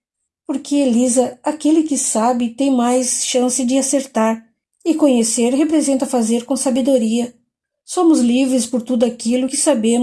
Porque, Elisa, aquele que sabe tem mais chance de acertar, e conhecer representa fazer com sabedoria. Somos livres por tudo aquilo que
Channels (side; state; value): both; identical; correlation 1.00